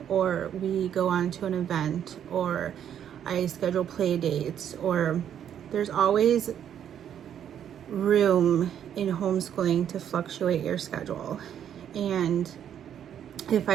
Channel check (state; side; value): quieter; left; 9.5 dB